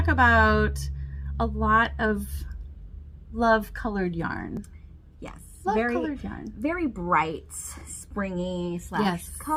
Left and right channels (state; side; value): identical; both; correlation 1.00